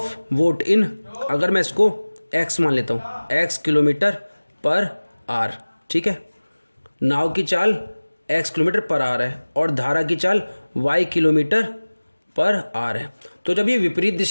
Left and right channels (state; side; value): inverted; both; correlation -1.00